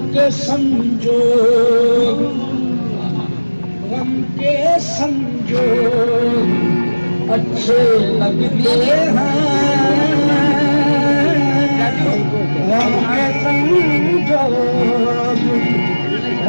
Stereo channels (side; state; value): both; inverted; correlation -1.00